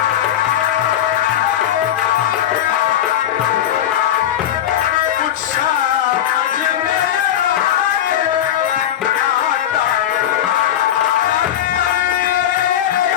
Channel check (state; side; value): quieter; right; 11.0 dB